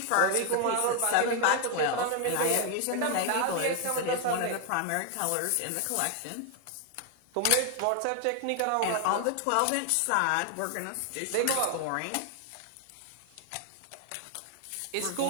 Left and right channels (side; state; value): both; different; correlation 0.01